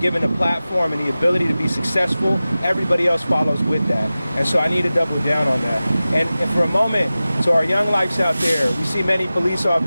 a platform and the ability to be successful, everybody else follows with that. And so I need to double down on that. And for a moment, to our young lives out there, we see many police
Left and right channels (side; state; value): both; inverted; correlation -0.96